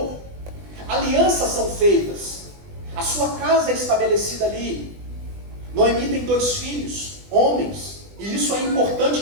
Alianças são feitas, a sua casa é estabelecida ali. Noemi tem 2 filhos, homens, e isso é importante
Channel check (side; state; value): left; late; 20 ms